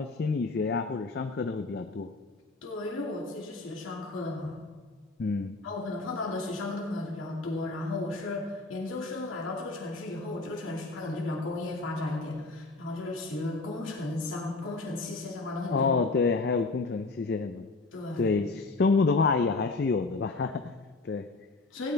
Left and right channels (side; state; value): right; quieter; 3.5 dB